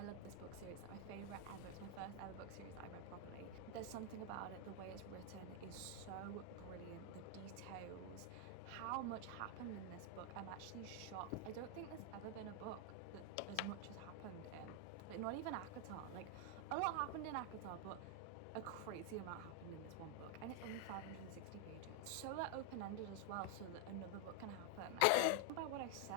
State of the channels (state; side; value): different; both; correlation 0.00